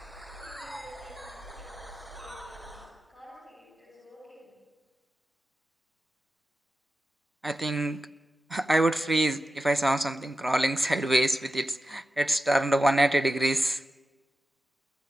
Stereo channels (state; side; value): normal; both; correlation 0.92